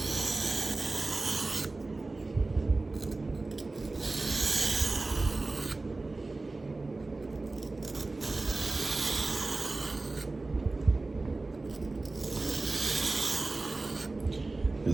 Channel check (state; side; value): quieter; left; 3.3 dB